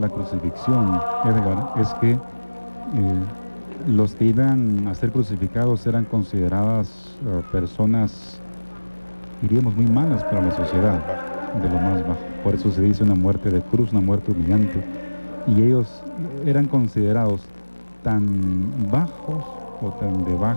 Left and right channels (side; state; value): both; inverted; correlation -1.00